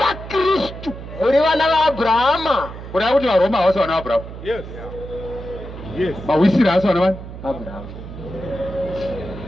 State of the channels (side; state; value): right; noise; hum, 12 dB below the sound